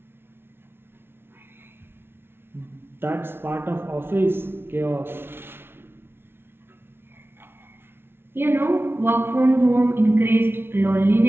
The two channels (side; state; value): left; late; 0.11 ms